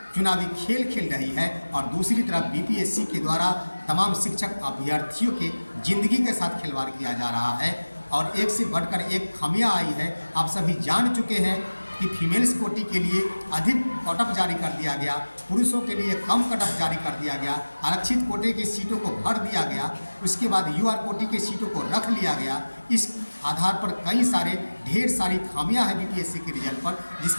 चुनावी खेल खेल रही है और दूसरी तरफ बीपीएससी के द्वारा तमाम शिक्षक अभ्यर्थियों के जिंदगी के साथ खिलवाड़ किया जा रहा है। और एक से बढ़कर एक खामियां आई है। आप सभी जान चुके हैं कि फीमेल्स कोटी के लिए अधिक कट ऑफ जारी कर दिया गया, पुरुषों के लिए कम कट ऑफ जारी कर दिया गया, आरक्षित कोटे की सीटों को भर दिया गया, उसके बाद यूआर कोटी की सीटों को रख लिया गया। इस आधार पर ढेर सारी खामियां हैं बीपीएससी के रिजल्ट पर, जिस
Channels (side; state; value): both; inverted; correlation -1.00